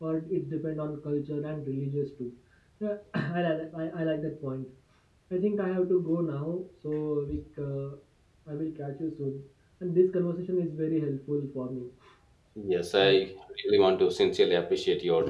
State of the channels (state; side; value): identical; both; correlation 1.00